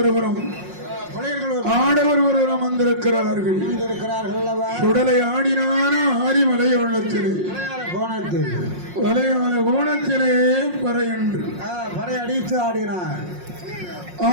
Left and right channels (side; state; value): left; late; 5.5 ms